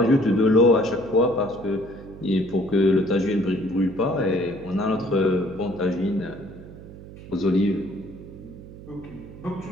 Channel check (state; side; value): noise; right; hum, 16 dB below the sound